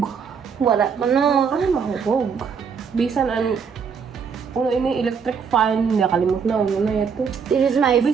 Wala. Ano? Ano mahubog? Bisan uno ini electric fan, nakalimot na uno na ito. This is my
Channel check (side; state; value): left; quieter; 6.3 dB